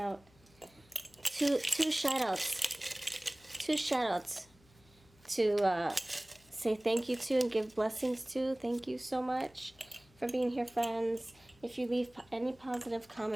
Two shout outs to say thank you to and give blessings to. Thank you so much for being here, friends. If you leave any positive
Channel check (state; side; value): noise; left; hum, 29 dB below the sound